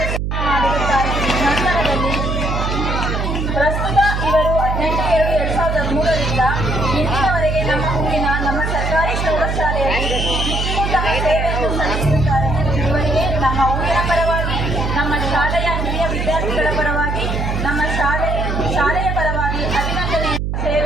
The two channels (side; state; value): right; noise; hum, 1 dB below the sound